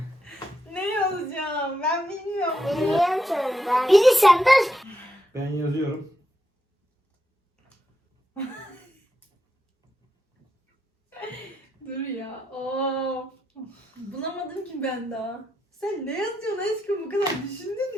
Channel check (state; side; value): normal; both; correlation 0.83